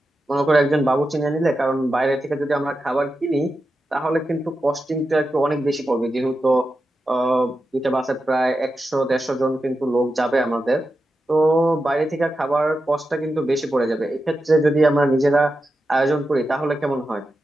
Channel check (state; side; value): normal; both; correlation 0.90